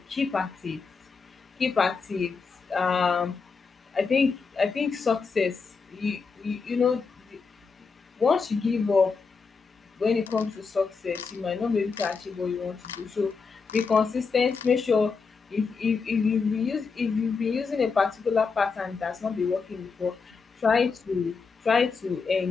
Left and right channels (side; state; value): right; quieter; 5.0 dB